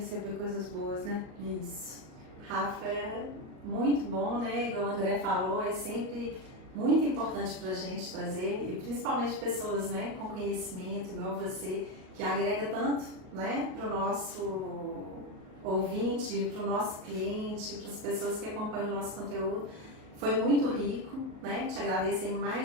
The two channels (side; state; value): left; late; 38 ms